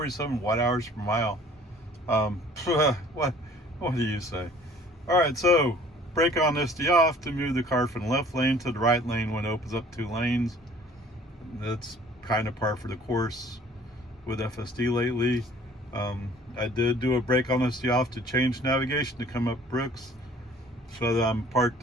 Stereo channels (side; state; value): both; normal; correlation 0.53